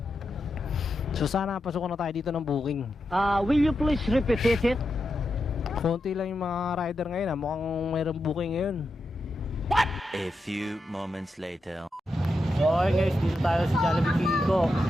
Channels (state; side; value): normal; both; correlation 0.87